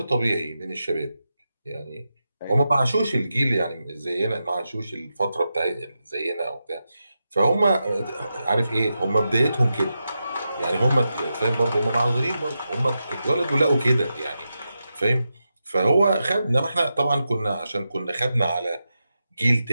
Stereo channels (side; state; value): both; inverted; correlation -0.89